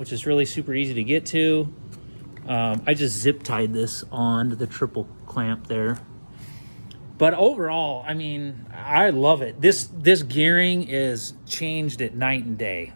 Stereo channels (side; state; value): both; inverted; correlation -1.00